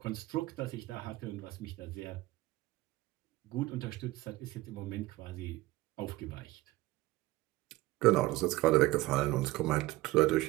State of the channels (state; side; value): quieter; left; 18.4 dB